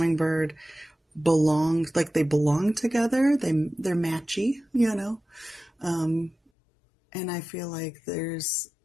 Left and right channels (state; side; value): drops out; right; at 6.4 s